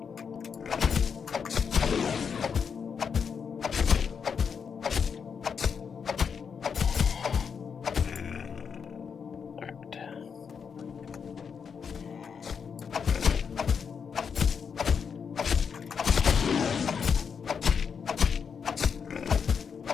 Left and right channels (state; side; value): quieter; right; 6.5 dB